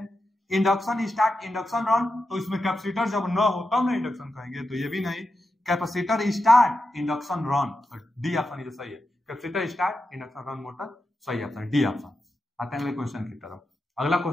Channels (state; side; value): normal; both; correlation 0.89